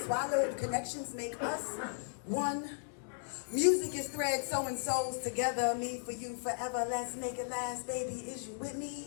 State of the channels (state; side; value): silent; right; digital silence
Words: connections make us one. Music is thread sewing souls together, me for you forever, let's make it last, baby, is you with